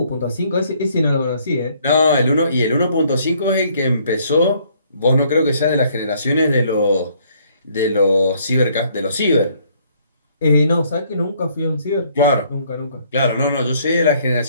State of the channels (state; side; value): inverted; both; correlation -0.64